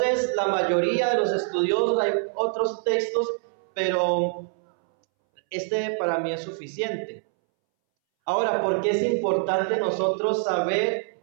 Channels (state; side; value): silent; left; 62 dB below the other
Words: la mayoría de los estudiosos, hay otros textos, pero este para mí es suficiente. Ahora, ¿por qué es importante nosotros saber